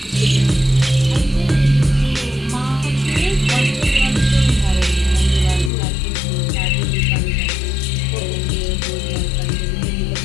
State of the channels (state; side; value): drops out; right; at 5.7 s